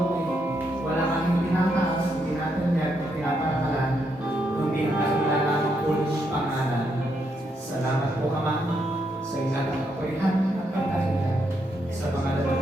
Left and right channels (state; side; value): normal; both; correlation 0.78